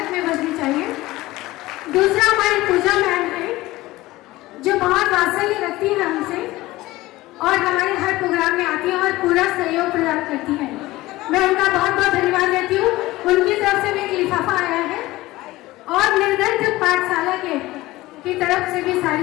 में बजनी चाहिए। दूसरा हमारी पूजा मैम है जो बहुत वात्सल्य रखती है हमसे और हमारे हर प्रोग्राम में आती है और पूरा सहयोग प्रदान करती है। मैं उनका बहुत बहुत धन्यवाद देती हूँ। उनकी तरफ से भी एक लिफाफा आया है और निर्धन पाठशाला की तरफ से भी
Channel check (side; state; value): right; quieter; 18.4 dB